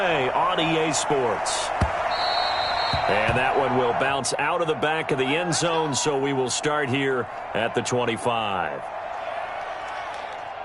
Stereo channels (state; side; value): identical; both; correlation 1.00